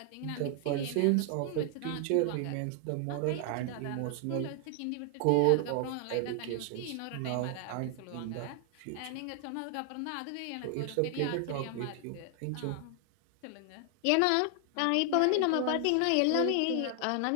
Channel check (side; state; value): both; different; correlation 0.00